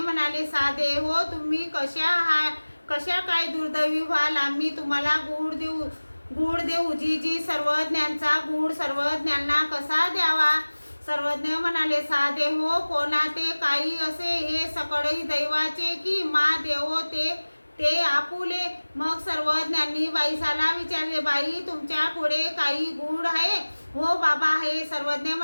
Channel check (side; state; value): both; inverted; correlation -1.00